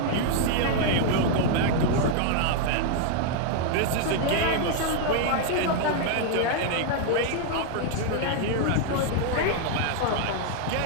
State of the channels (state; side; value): different; both; correlation 0.00